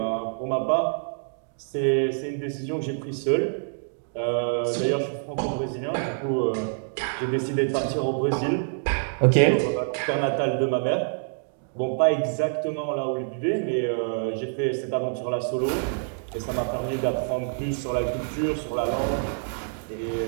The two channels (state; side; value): silent; left; digital silence